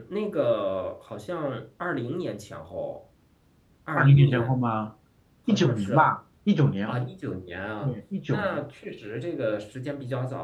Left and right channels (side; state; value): both; identical; correlation 1.00